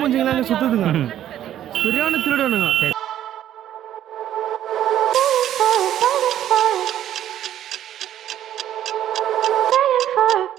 சுற்றுதுங்க, சரியான திருடனுங்க.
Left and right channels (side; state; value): left; quieter; 11.5 dB